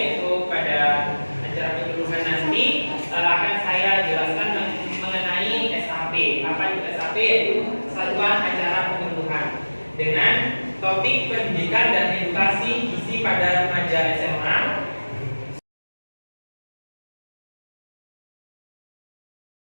pada acara penyuluhan nanti, akan saya jelaskan mengenai SAP. Apa itu SAP? Yaitu Satuan Acara Penyuluhan, dengan topik pendidikan dan edukasi gizi pada remaja SMA.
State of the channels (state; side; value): inverted; both; correlation -1.00